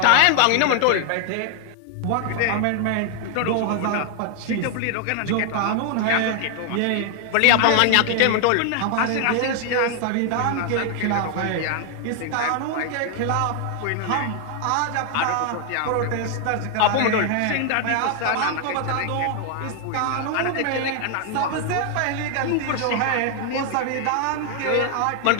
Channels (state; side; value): different; both; correlation 0.00